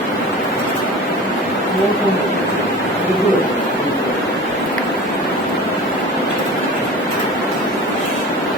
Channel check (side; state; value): both; normal; correlation 0.36